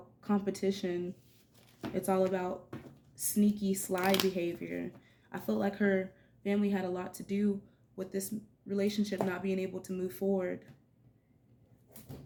competition. It's all about sneaky, sly behavior. I felt like her family had a lot to do with this relationship not being able to move forward.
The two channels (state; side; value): identical; both; correlation 1.00